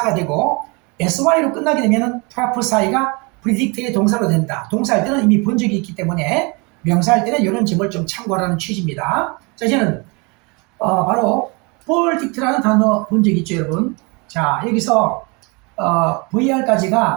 되고 sy로 끝나게 되면 prophesy가 predict의 동사로 된다. 동사할 때는 이미 본 적이 있기 때문에 명사할 때는 이런 점을 좀 참고하라는 취지입니다. 자, 이제는 바로 verdict라는 단어 본 적 있죠, 여러분? 자, 여기서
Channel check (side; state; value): left; quieter; 29.4 dB